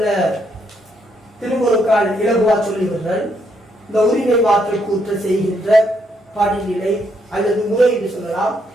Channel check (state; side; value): normal; both; correlation 0.74